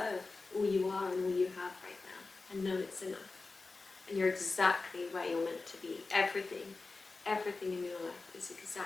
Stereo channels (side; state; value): right; quieter; 3.8 dB